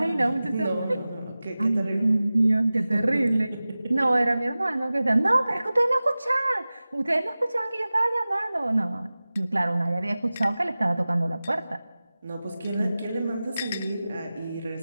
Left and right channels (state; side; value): inverted; both; correlation -0.97